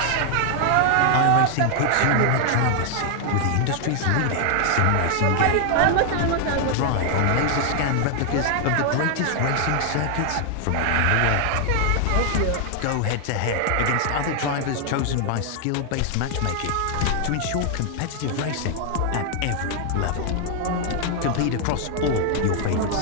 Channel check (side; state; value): both; different; correlation 0.00